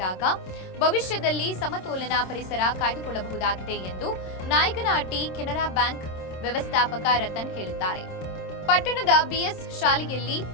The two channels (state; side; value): late; right; 26 ms